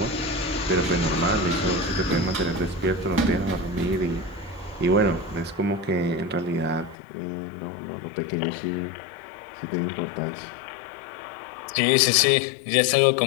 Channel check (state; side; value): drops out; right; at 7.0 s